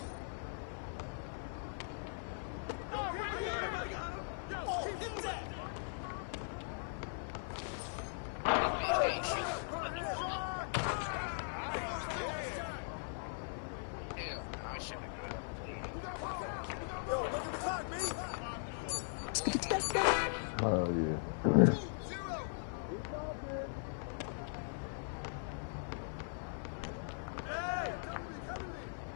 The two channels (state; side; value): silent; right; 51 dB below the other